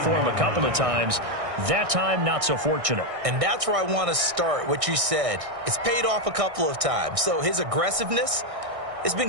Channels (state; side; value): late; left; 1.6 ms